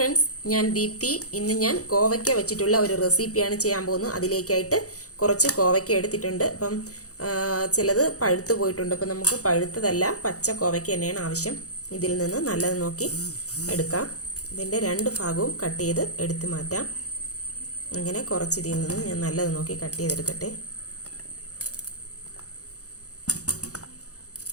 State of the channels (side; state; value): right; late; 0.66 ms